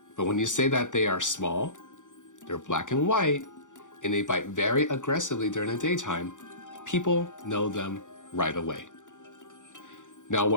But when you say that they are small, they're black and white, and they bite very aggressively during the daytime, people know them right away. Now,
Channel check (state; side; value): late; right; 0.86 ms